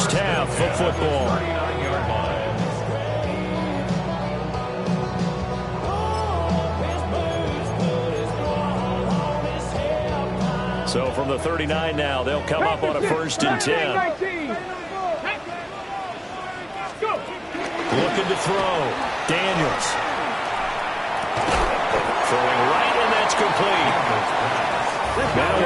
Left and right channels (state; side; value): identical; both; correlation 1.00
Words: half of football. So from the 39 now, they'll come up on a 1st and 10. Looking to throw. Daniels. Throwing right, and that's complete. Now